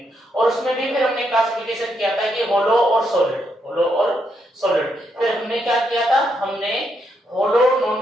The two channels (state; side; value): normal; both; correlation 0.78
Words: और उसमें भी फिर हमने क्लासिफिकेशन किया था कि होलो और सॉलिड, होलो और सॉलिड। फिर हमने क्या किया था, हमने hollow